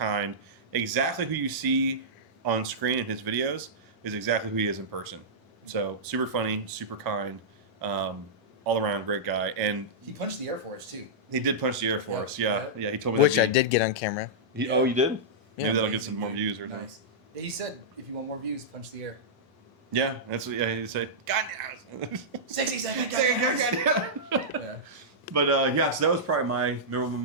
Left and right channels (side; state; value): both; normal; correlation -0.13